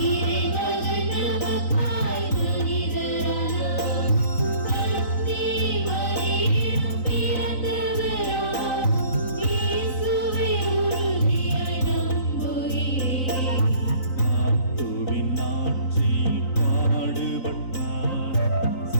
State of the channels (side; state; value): right; late; 3.9 ms